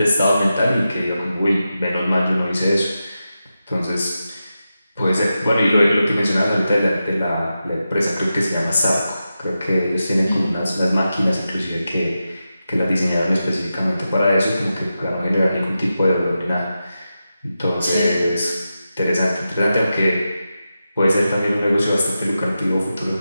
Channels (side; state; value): both; inverted; correlation -0.90